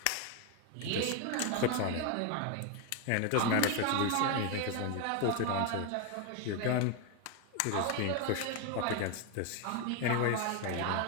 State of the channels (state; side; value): different; both; correlation 0.01